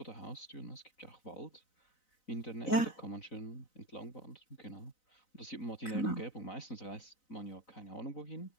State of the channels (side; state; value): right; late; 4.0 ms